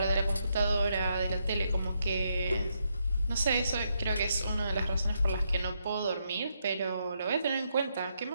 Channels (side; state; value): both; inverted; correlation -0.79